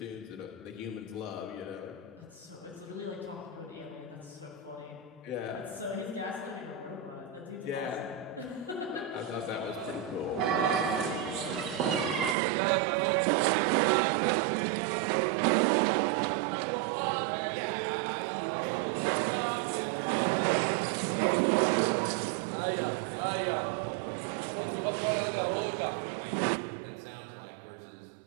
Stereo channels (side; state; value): left; drops out; at 12.4 s